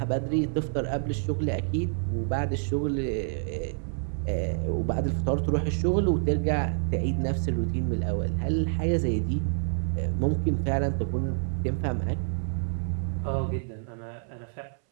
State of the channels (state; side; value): silent; left; 59 dB below the other